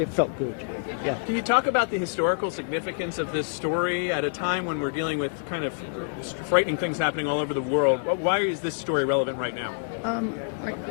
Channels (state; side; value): silent; right; digital silence